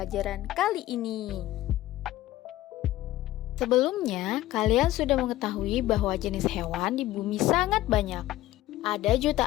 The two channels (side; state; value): right; quieter; 15.5 dB